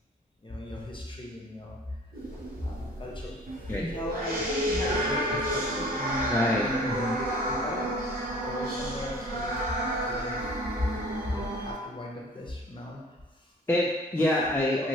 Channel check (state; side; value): normal; both; correlation 0.49